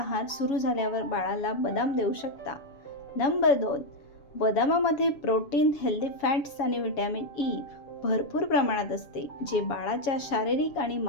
सुरू झाल्यावर बाळाला बदाम देऊ शकता. नंबर 2, बदामामध्ये प्रोटीन, हेल्दी फॅट्स आणि व्हिटॅमिन ई भरपूर प्रमाणात असते, जे बाळाच्या शारीरिक आणि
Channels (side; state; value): right; late; 7.2 ms